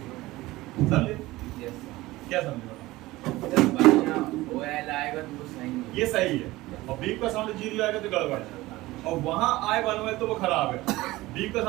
समझे? क्या समझे? आएगा तो वो सही है, ये सही है, और बीप का साउंड 0 आएगा तो गड़बड़ है, और वहां आए बनवेल तो वो खराब है, बीप का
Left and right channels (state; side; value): quieter; left; 18.7 dB